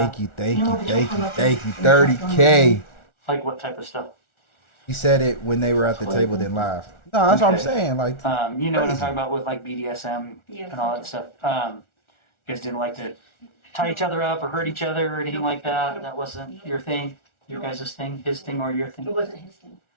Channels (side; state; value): right; late; 1.4 ms